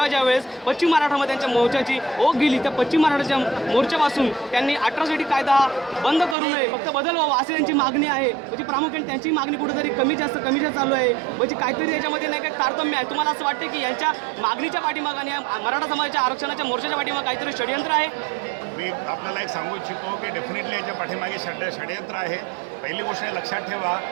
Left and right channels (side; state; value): left; drops out; at 6.4 s